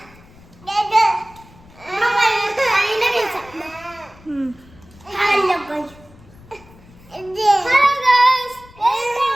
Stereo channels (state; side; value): noise; left; rumble, 24 dB below the sound